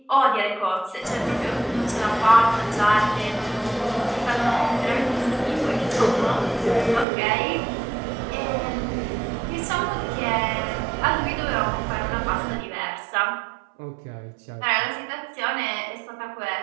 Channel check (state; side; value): drops out; left; at 7.1 s